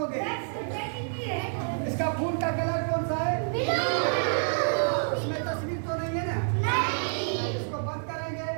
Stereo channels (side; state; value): left; silent; digital silence